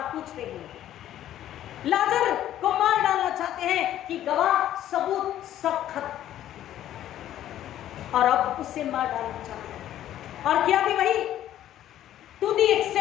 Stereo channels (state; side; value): quieter; right; 12.2 dB